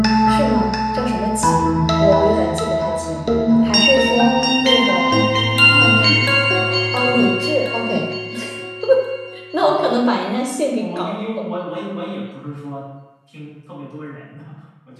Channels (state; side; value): identical; both; correlation 1.00